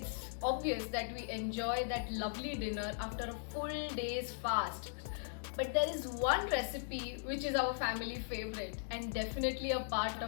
obvious that we enjoy that lovely dinner after a full day's fast, but there is one recipe which is our family favorite and definitely a part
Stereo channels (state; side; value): silent; right; digital silence